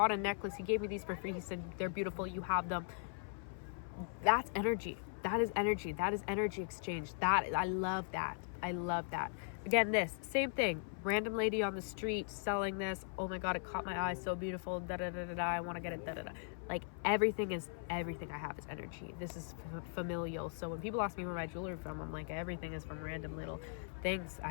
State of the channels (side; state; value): right; silent; 52 dB below the other